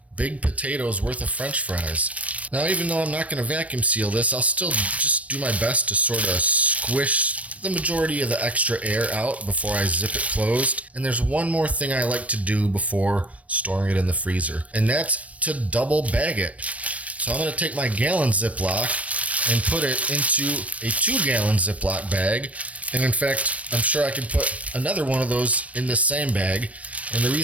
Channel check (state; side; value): late; left; 0.066 ms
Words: big potatoes worth of French fries. Now, even though I'm not going to vacuum seal this, I'll still just do my best to sort of squish the majority of the extra air out before I zip it closed. And there's one more thing I like to do before storing it in the freezer, and that's to double bag it. So I'm going to take my gallon Ziploc and put it into a 2-gallon Ziploc bag. And in fact, I'm sure I could put another one of those in this same bag. And the